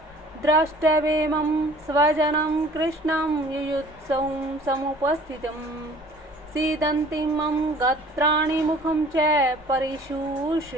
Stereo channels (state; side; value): normal; both; correlation 0.50